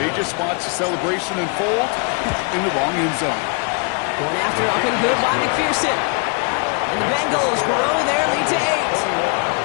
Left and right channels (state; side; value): quieter; right; 36.4 dB